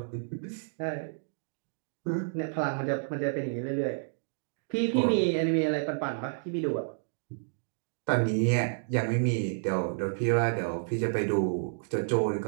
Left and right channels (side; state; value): left; silent; digital silence